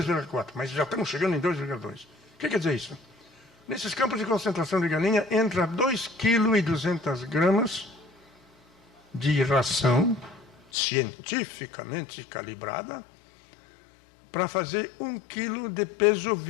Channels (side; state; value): right; drops out; at 10.6 s